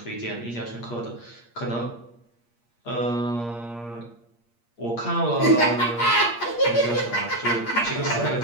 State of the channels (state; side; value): late; right; 8.5 ms